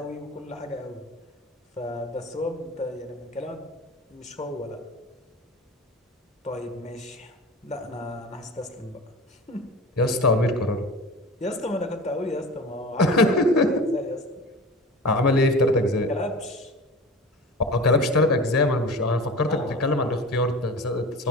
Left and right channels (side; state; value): both; normal; correlation 0.35